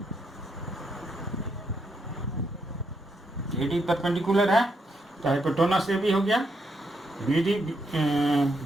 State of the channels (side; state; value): both; normal; correlation 0.78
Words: AD परपेंडिकुलर है, तो हाइपोटेनस AB हो गया, BD